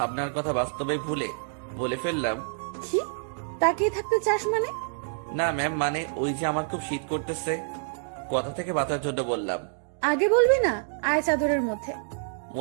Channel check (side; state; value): left; silent; digital silence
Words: কথা বাস্তবে ভুলে বলে ফেললাম। কি তাকিয়ে থাকতে চাস মানে? না ম্যাম, মানে ওই যে আমার খুব শীত করতেছে, কথা থেকে বাঁচার জন্য বললাম। আগে বলবি না? আয় চাদরের মধ্যে।